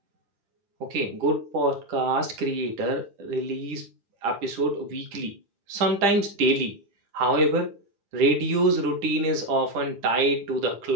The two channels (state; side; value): late; left; 9.9 ms